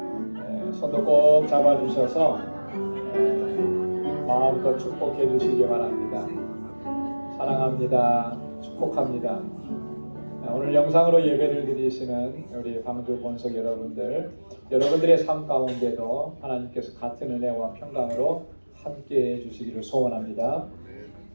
네, 손도 꼭 잡아주셔서 마음껏 축복해 주시기 바랍니다. 사랑합니다. 축복합니다. 오늘 영상으로 예배를 드리시는 우리 방주 본석 여러분들의 삶 가운데도 하나님께서 같은 은혜와 평강으로 함께해 주시기를 소원합니다.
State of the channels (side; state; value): both; inverted; correlation -1.00